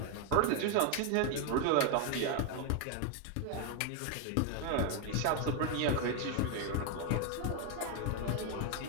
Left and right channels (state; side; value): different; both; correlation 0.01